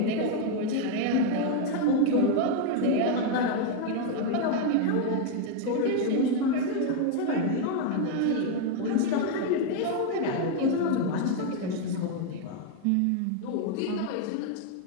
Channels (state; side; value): different; both; correlation 0.01